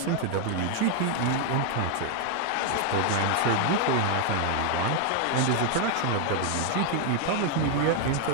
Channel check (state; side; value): different; both; correlation 0.00